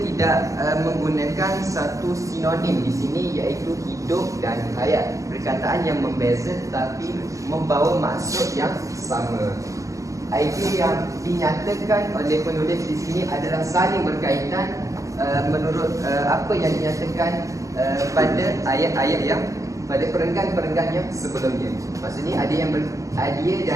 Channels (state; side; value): late; left; 0.16 ms